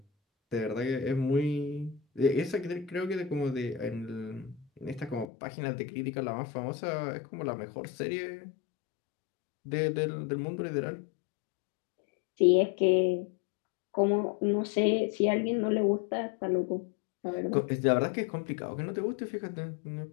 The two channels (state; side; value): drops out; right; at 5.2 s